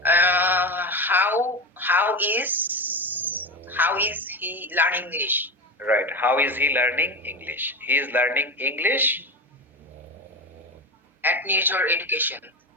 How is he learning English? Right. How is he learning English? He is learning English. At Nirchor Education.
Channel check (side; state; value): both; normal; correlation 0.20